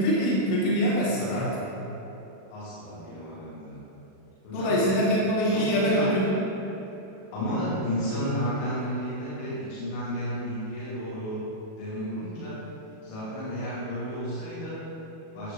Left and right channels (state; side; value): late; right; 37 ms